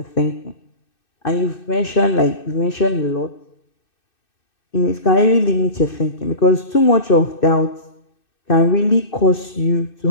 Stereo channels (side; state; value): right; late; 2.6 ms